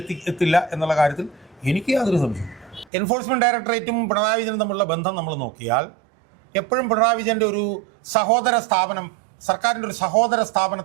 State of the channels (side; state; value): left; drops out; at 2.9 s